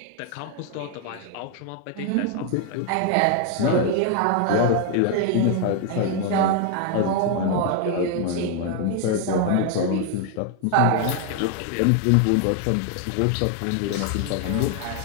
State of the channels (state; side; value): different; both; correlation 0.00